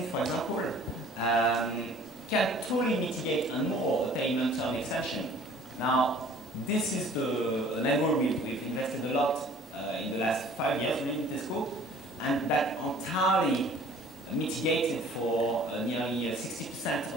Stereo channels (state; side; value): normal; both; correlation 0.51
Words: for example, can totally mitigate and more a payment term extension. Now, this is an angle we've invested a lot in the last 5 years in Tesco, and that entirely mitigated for nearly